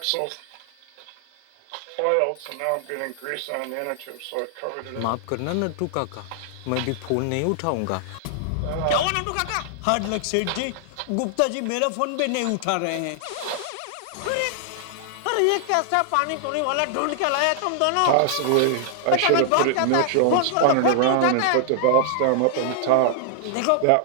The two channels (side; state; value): both; different; correlation -0.01